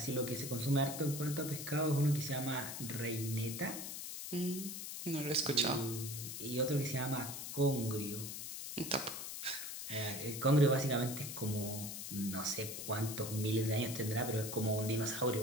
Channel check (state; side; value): noise; left; hiss, 7 dB below the sound